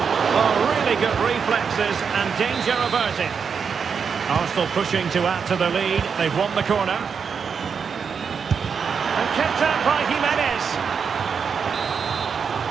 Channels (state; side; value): quieter; left; 6.2 dB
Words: Oh, really good reflexes and danger averted. Arsenal pushing to add to the lead. They've won the corner. And kept out by Jimenez.